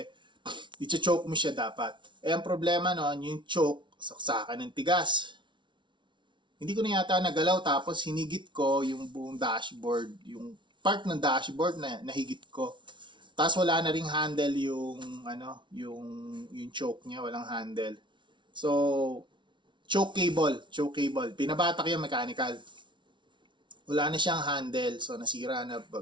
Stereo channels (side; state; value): left; late; 0.24 ms